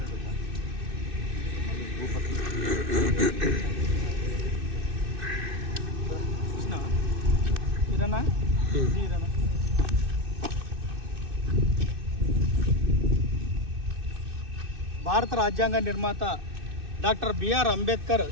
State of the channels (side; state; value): left; late; 2.6 ms